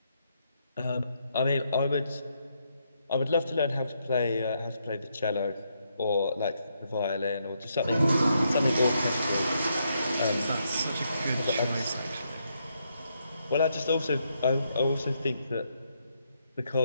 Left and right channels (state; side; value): inverted; both; correlation -0.78